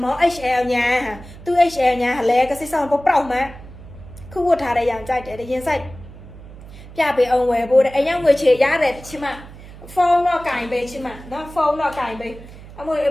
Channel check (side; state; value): right; noise; hum, 17 dB below the sound